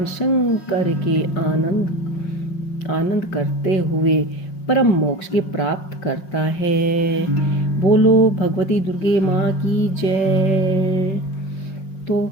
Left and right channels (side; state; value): right; late; 5.6 ms